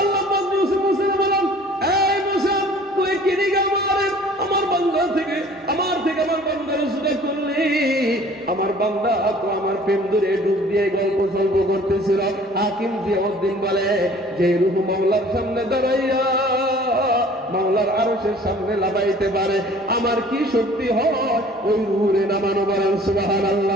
আল্লাহ পাক মুসা বলেন, এই মুসা তুই কি দিগা মারে আমার বান্দা থেকে আমার বান্দার সুরা করলি? আমার বান্দা তো আমার প্রেম ধরে ডুব দিয়ে গল্প সল্প করতেছিল। হাকিম জিয়াউদ্দিন বলে, যে রূহ মাওলার সামনে দাঁড়াইয়া মাওলার আরশের সামনে লাগাইতে পারে, আমার কি শক্তি হয় ওই রূহে নামানো? বলেন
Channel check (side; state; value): both; normal; correlation 0.51